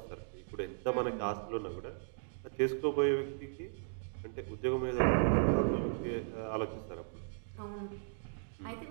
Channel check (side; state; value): left; silent; digital silence